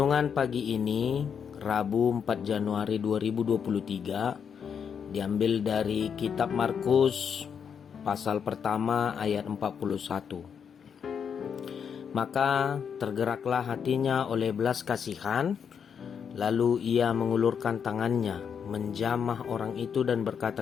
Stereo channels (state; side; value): quieter; right; 7.2 dB